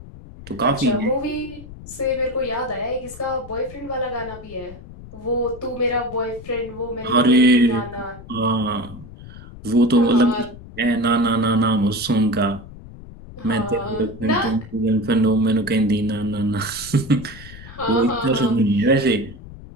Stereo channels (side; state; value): left; noise; rumble, 16 dB below the sound